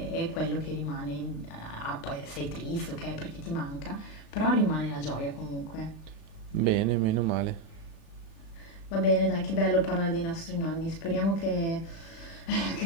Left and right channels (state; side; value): late; right; 36 ms